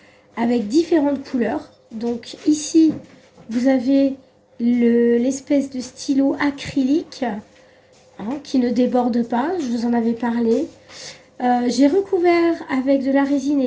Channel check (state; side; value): identical; both; correlation 1.00